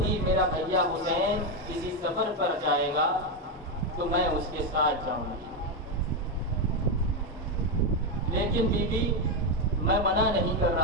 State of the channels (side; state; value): both; normal; correlation 0.06